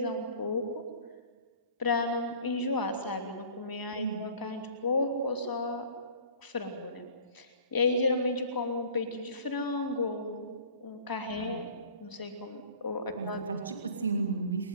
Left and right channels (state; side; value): inverted; both; correlation -0.47